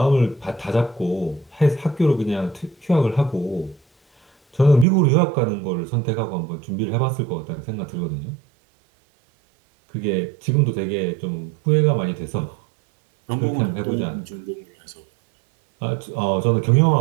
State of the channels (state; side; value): drops out; left; at 4.9 s